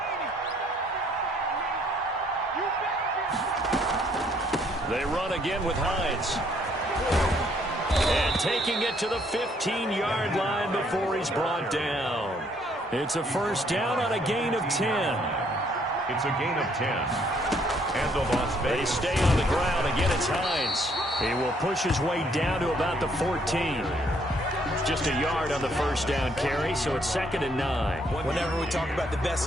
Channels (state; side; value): normal; both; correlation 0.67